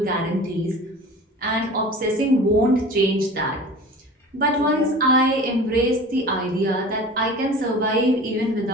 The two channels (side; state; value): both; normal; correlation 0.39